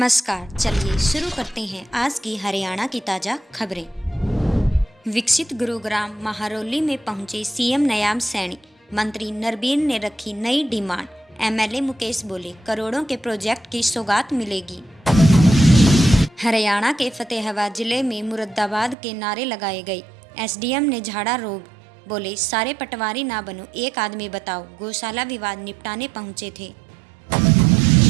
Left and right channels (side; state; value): left; drops out; at 18.9 s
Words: चलिए शुरू करते हैं आज की हरियाणा की ताज़ा खबरें। विकसित गुरुग्राम महारौली में पहुंचे सीएम नयाब सैनी, मंत्री नरबीर ने रखी नई डिमांड। एमएलए मुकेश बोले, करोड़ों के प्रोजेक्ट की सौगात मिलेगी। हरियाणा के फतेहाबाद जिले में मुरादाबाद के नारे लगाए गए। एसडीएम ने झाड़ा रोब, बोले सारे पटवारी ना बनो, एक आदमी बताओ। गौशाला विवाद निपटाने पहुंचे थे।